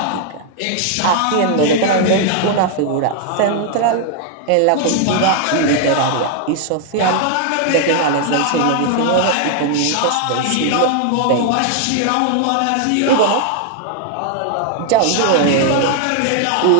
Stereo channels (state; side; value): different; both; correlation 0.00